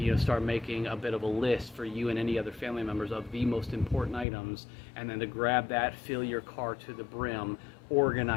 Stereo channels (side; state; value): right; drops out; at 4.2 s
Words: start making a bit of a list for you and any other family members of the most important items, and then to grab that, fill your car to the brim,